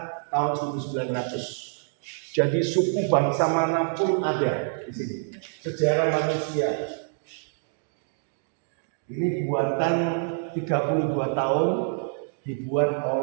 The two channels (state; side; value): silent; left; digital silence